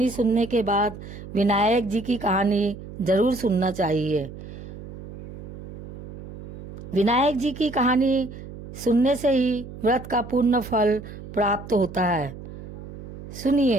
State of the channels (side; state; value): right; noise; hum, 13 dB below the sound